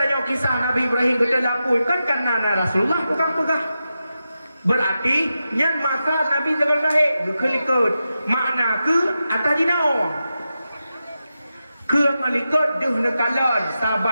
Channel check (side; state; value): both; inverted; correlation -0.90